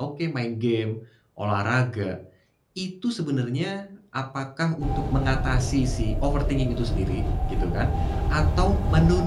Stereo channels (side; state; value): both; identical; correlation 1.00